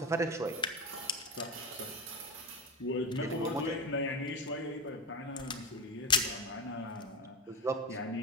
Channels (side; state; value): both; normal; correlation 0.18